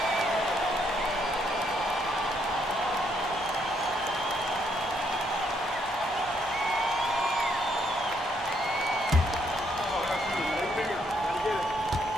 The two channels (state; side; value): normal; both; correlation 0.73